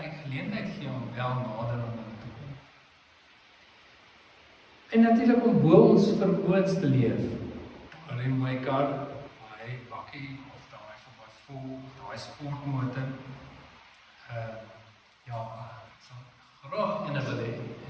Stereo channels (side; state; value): both; identical; correlation 1.00